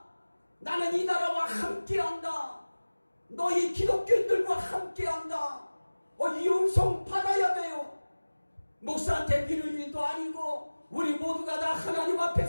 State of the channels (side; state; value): both; inverted; correlation -1.00